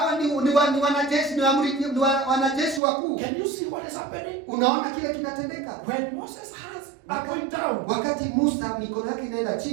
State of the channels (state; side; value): drops out; left; at 2.8 s